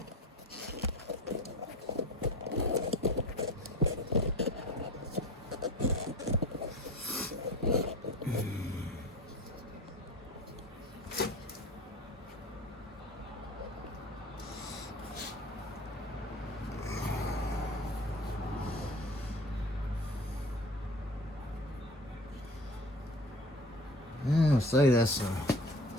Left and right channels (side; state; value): both; normal; correlation 0.38